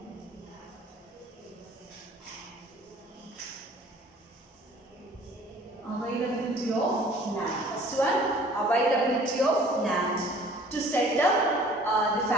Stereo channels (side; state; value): both; normal; correlation 0.51